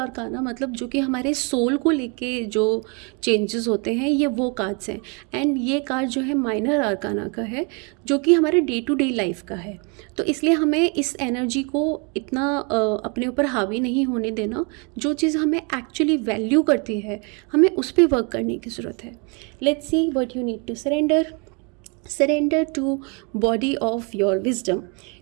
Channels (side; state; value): left; quieter; 33.7 dB